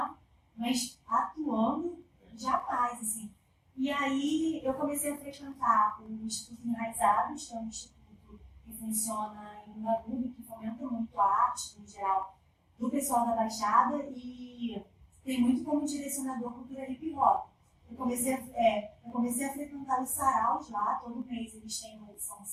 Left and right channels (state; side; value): identical; both; correlation 1.00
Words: mas atuando, jamais, assim. E aí eu comecei a frequentar o Instituto Enraizados, que é um instituto que funciona em Ubatuba, que fomenta muito a arte, no geral, do pessoal da Baixada, e tem muito como direcionador cultura hip hop. Eu comecei a frequentar os saraus lá, todo mês eles têm uma edição de